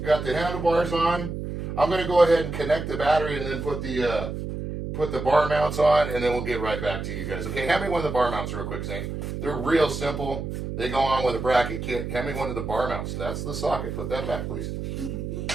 handlebars on. I'm going to go ahead and connect the battery and then put the bar mounts on, and then we'll get right back to you guys. Okay, hand me one of the bar mounts real quick, Zane. They're real simple. They go on with a bracket kit. Hand me one of the bar mounts. That's the socket. Put that back, please.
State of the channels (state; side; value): noise; right; hum, 5 dB below the sound